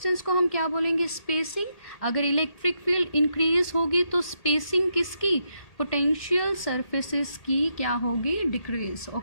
को हम क्या बोलेंगे, स्पेसिंग। अगर इलेक्ट्रिक फील्ड इंक्रीज होगी तो स्पेसिंग किसकी, पोटेंशियल सरफेसेस की क्या होगी, डिक्रीज।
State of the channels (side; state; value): right; late; 1.8 ms